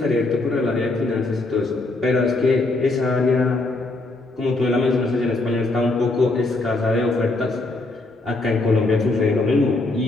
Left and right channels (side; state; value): right; quieter; 3.1 dB